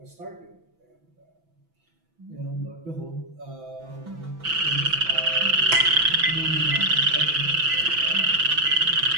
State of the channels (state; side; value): late; left; 6.0 ms